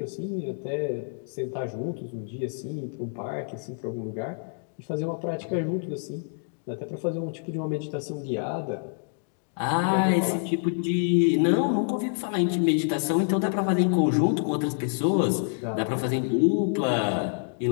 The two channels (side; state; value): right; silent; digital silence